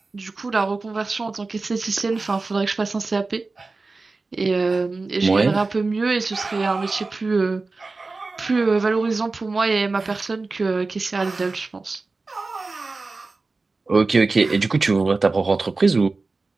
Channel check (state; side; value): quieter; left; 3.7 dB